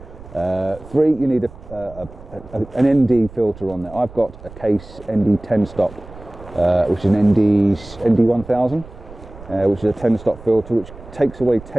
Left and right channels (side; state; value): right; noise; rumble, 18 dB below the sound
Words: 3, you need an ND filter on there. I've got a Case ND 10 stop. Which is an ND 1000, which is a 10 stop filter which takes away